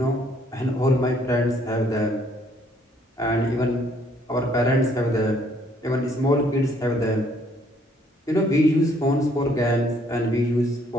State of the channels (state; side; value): normal; both; correlation 0.65